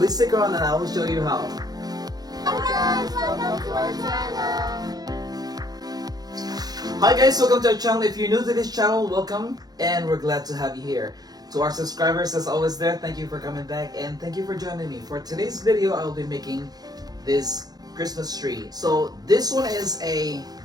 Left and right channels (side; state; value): left; late; 0.19 ms